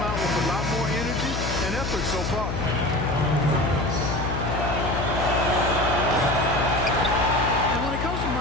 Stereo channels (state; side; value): noise; left; hum, 3 dB below the sound